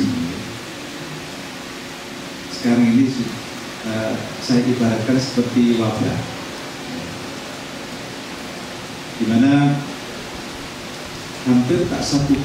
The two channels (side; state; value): both; identical; correlation 1.00